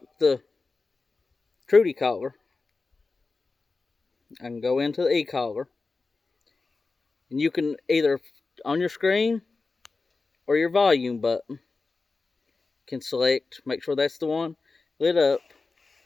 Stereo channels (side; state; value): right; quieter; 4.0 dB